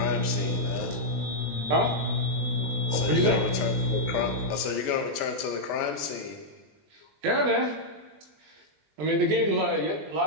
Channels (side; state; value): left; late; 20 ms